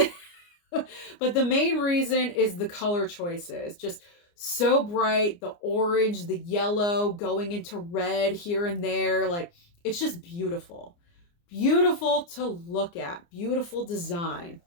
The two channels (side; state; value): right; late; 29 ms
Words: but the main reason is the color choices. Just so bright, the orange, the yellow going into red here and there. Like, it's just beautiful. Beautiful to look at. Beautiful design.